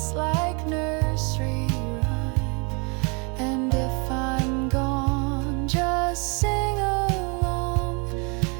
like nursery rhyme. And if I'm gone, just sing along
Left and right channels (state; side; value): quieter; left; 32.5 dB